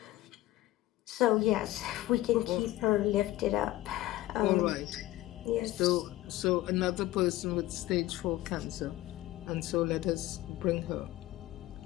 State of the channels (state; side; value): quieter; right; 16.3 dB